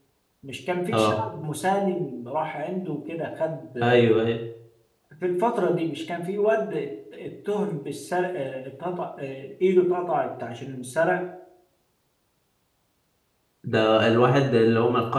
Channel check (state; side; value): identical; both; correlation 1.00